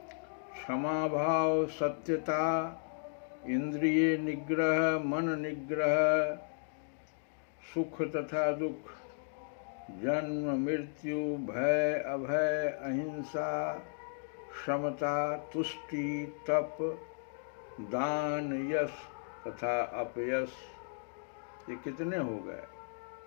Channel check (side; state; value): right; silent; digital silence